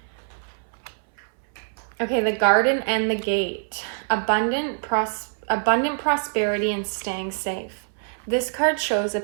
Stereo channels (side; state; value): left; silent; 62 dB below the other